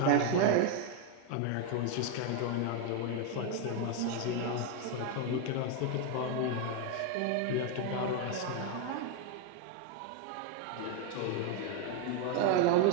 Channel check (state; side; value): different; both; correlation 0.01